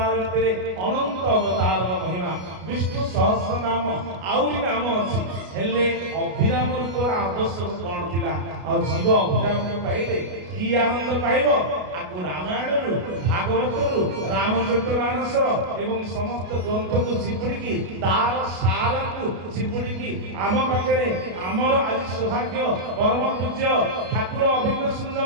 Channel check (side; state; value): left; late; 33 ms